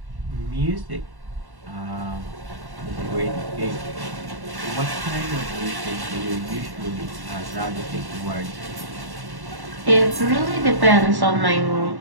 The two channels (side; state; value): left; late; 1.1 ms